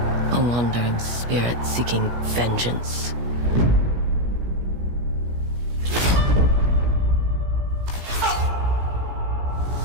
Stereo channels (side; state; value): left; late; 17 ms